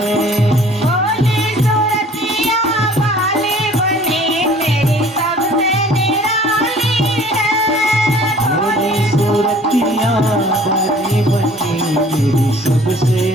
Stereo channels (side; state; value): both; normal; correlation 0.51